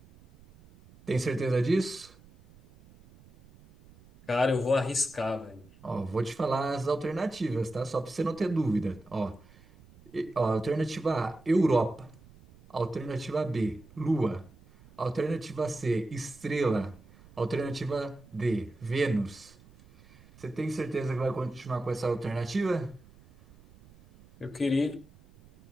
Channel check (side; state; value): right; noise; rumble, 25 dB below the sound